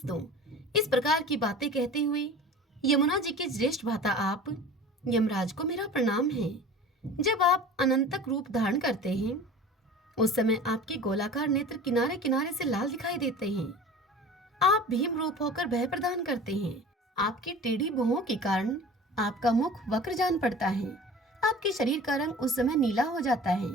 दो। इस प्रकार की बातें कहते हुए यमुना जी के ज्येष्ठ भ्राता आप यमराज को मेरा प्रणाम है। जब आप अनंतक रूप धारण करते हैं, उस समय आपके गोलाकार नेत्र किनारे किनारे से लाल दिखाई देते हैं। आप भीम रूप होकर भय प्रदान करते हैं। आपकी टेढ़ी भुहों के कारण आपका मुख वक्र जान पड़ता है। आपके शरीर का रंग उस समय नीला हो जाता है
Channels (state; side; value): normal; both; correlation 0.40